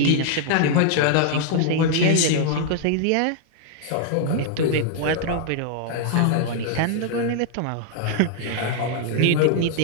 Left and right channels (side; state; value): both; different; correlation -0.01